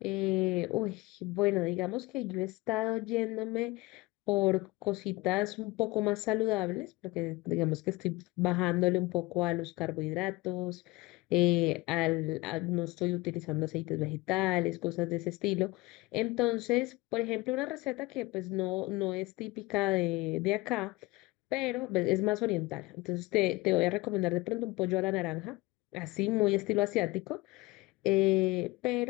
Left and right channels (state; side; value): quieter; right; 21.2 dB